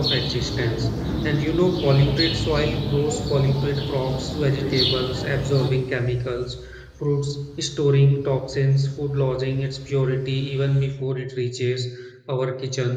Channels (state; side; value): identical; both; correlation 1.00